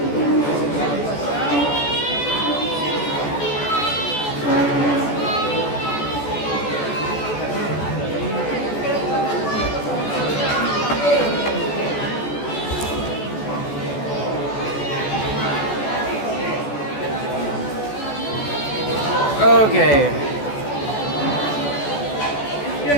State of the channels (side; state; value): right; late; 14 ms